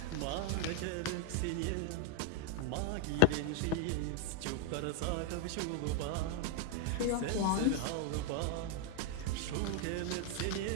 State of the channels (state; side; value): different; both; correlation 0.00